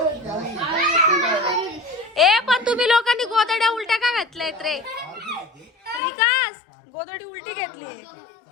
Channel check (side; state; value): right; drops out; at 6.0 s